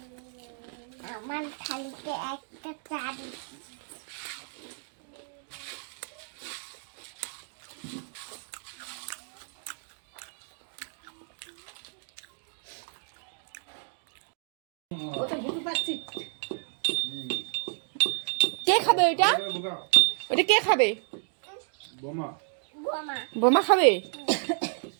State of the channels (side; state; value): left; silent; 57 dB below the other